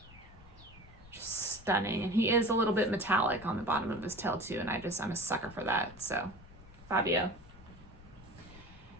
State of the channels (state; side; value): noise; left; rumble, 21 dB below the sound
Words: Just stunning. And he is a little bit metallic on the bottom of his tail too, and I'm a sucker for that. So, Fabio.